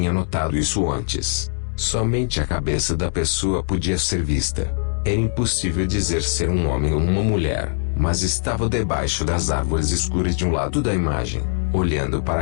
notado isso antes. Somente a cabeça da pessoa podia ser vista. Era impossível dizer ser um homem ou uma mulher, mas estava debaixo das árvores escuras de um lado da imagem, olhando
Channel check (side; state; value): right; silent; digital silence